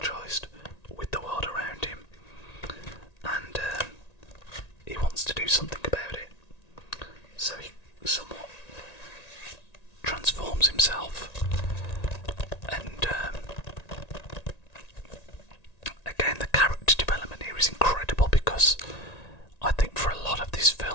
with the world around him, and he wants to do something about it. So he somewhat transforms himself, and again, the character development here is incredible, because I think for a lot of this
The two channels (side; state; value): right; late; 1.9 ms